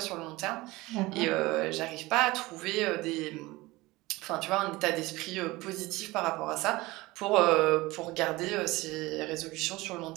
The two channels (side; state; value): left; quieter; 20.6 dB